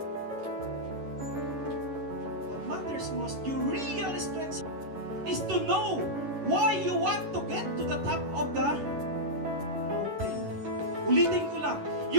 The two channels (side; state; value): left; late; 11 ms